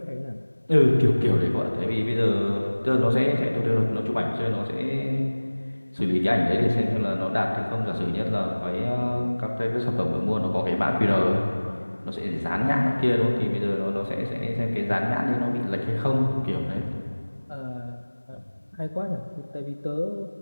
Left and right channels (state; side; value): inverted; both; correlation -1.00